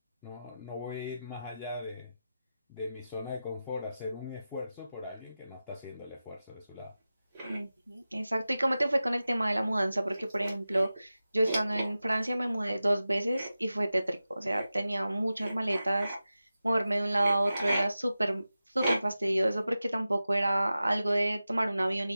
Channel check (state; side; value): inverted; both; correlation -0.94